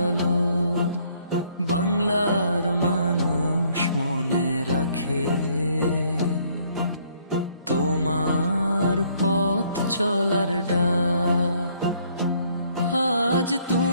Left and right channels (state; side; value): inverted; both; correlation -0.65